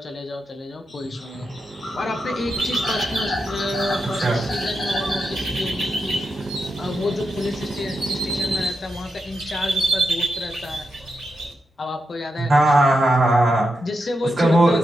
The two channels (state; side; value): normal; both; correlation 0.87